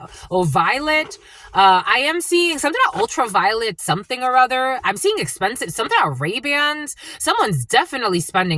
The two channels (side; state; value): both; identical; correlation 1.00